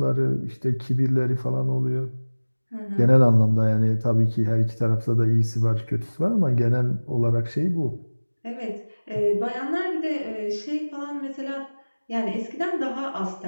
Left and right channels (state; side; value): inverted; both; correlation -1.00